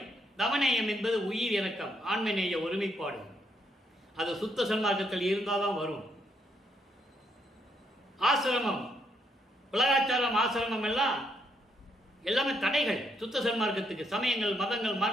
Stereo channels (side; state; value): both; normal; correlation 0.75